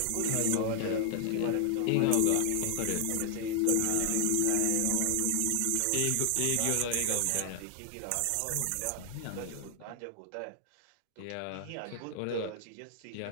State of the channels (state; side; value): different; both; correlation 0.00